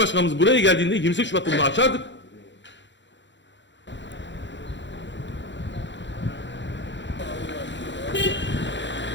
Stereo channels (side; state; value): right; late; 0.53 ms